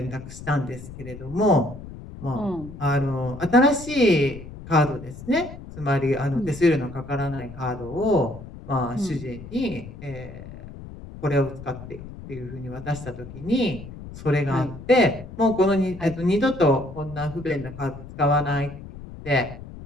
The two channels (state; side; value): noise; left; rumble, 14 dB below the sound